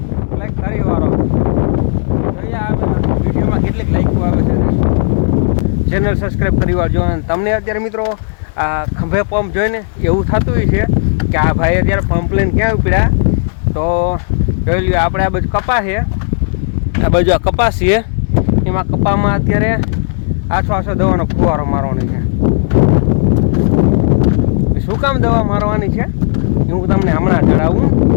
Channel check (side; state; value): right; silent; digital silence